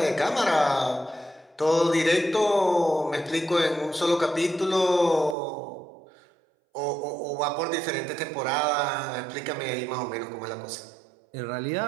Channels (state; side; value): drops out; left; at 5.4 s